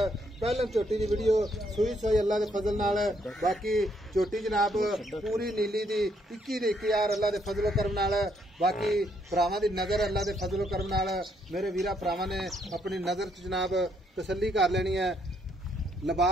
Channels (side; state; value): both; normal; correlation 0.72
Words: पहले झोटी की वीडियो सूई सोई अल्लाह के फजल नाल। बाकी झोटी जनाब पूरी नीली दी 21,000 अल्लाह के फजलो करम नाल। बाकी भरावां दी नजर अल्लाह के फजलो करम नाल मेरे वीरा भरावां ने अपनी नजर च जनाब तसल्ली कर लेनी है।